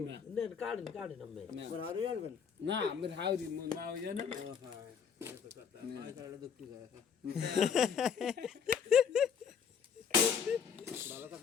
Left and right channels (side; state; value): right; quieter; 7.0 dB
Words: না নেন কাটেন কাটেন আমি তোমার আরো আনবেন না আমার হাউরি মা ওই জানা ও হ্যাঁ এটা তো কথা আই কারণে দুঃখ যায় ভালো